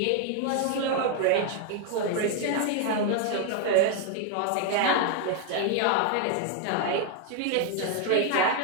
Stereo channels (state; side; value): different; both; correlation 0.01